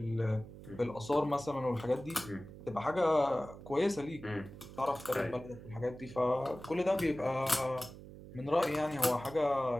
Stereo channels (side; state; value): right; noise; hum, 15 dB below the sound